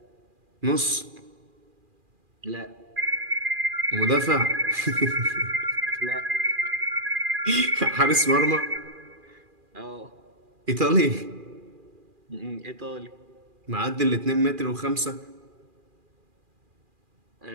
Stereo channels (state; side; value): late; left; 2.4 ms